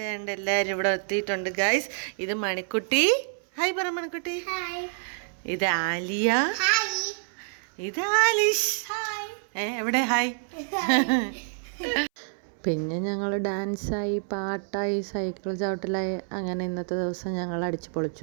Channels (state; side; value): silent; left; 60 dB below the other